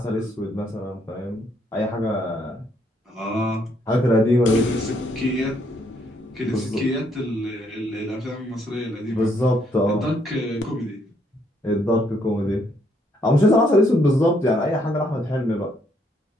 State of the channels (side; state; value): both; normal; correlation 0.71